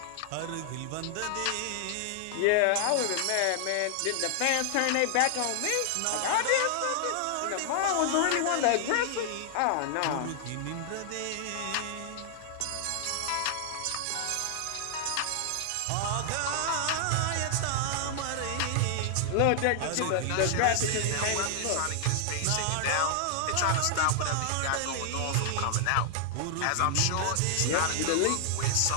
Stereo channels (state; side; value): different; both; correlation -0.01